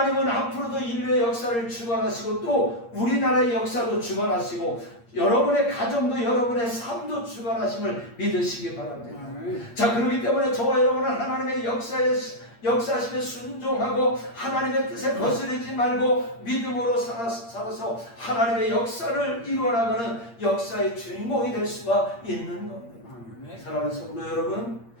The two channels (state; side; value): late; right; 8.6 ms